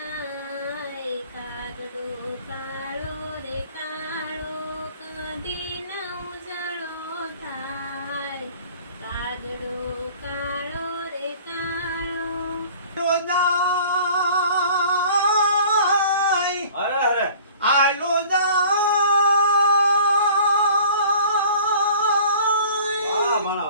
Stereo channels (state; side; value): inverted; both; correlation -0.47